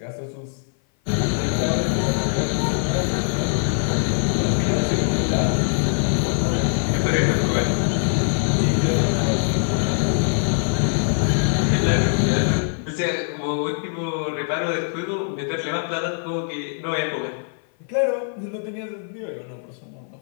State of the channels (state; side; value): silent; right; 57 dB below the other